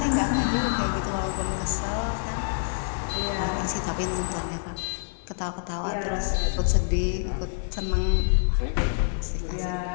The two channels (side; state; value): right; silent; 60 dB below the other